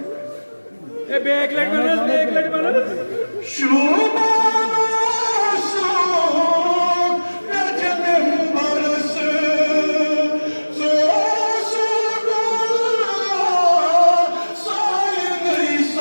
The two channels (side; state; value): both; inverted; correlation -1.00